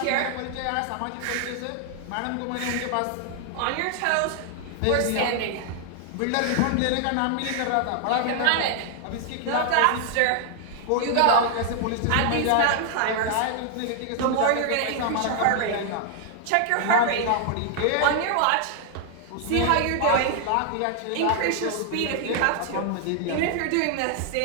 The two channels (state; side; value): different; both; correlation 0.00